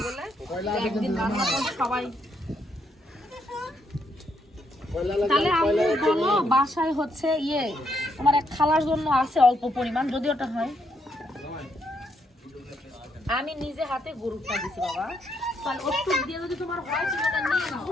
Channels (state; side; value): normal; both; correlation 0.75